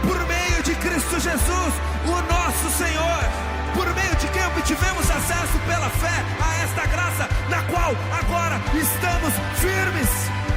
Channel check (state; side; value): identical; both; correlation 1.00